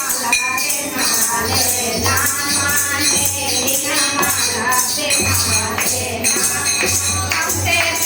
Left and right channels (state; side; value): identical; both; correlation 1.00